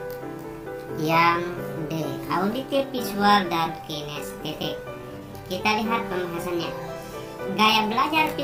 yang D, auditif, visual, dan kinestetik. Kita lihat pembahasannya. Gaya belajar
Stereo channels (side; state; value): both; identical; correlation 1.00